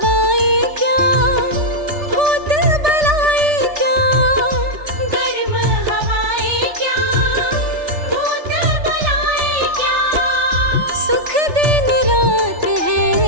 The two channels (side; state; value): left; late; 3.4 ms